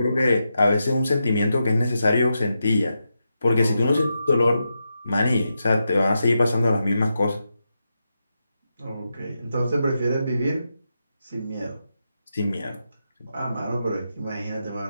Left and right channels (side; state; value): both; inverted; correlation -0.87